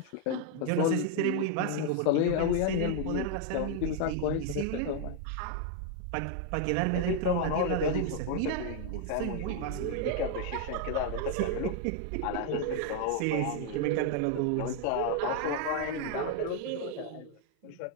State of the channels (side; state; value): both; different; correlation 0.00